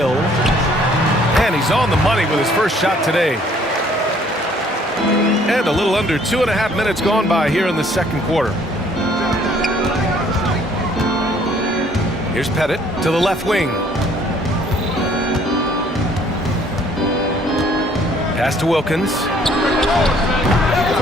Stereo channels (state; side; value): normal; both; correlation 0.60